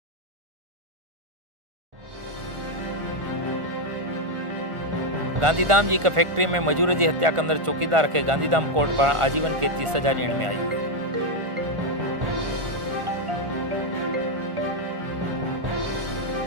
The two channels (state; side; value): late; left; 1.4 ms